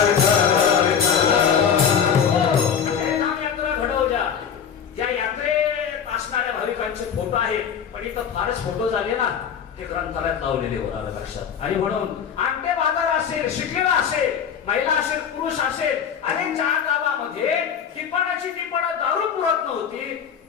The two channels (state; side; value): quieter; right; 7.6 dB